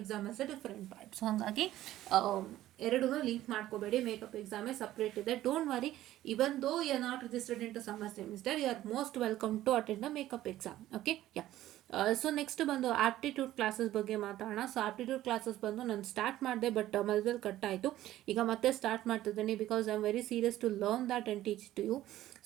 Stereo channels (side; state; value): left; quieter; 14.2 dB